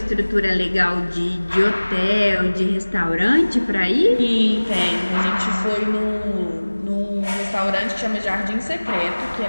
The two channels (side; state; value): both; inverted; correlation -1.00